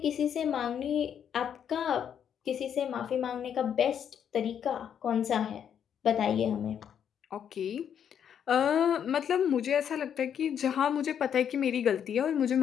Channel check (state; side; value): quieter; right; 8.6 dB